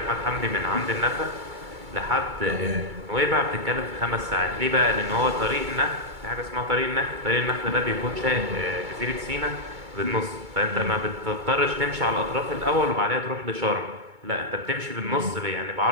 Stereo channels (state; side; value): late; left; 2.2 ms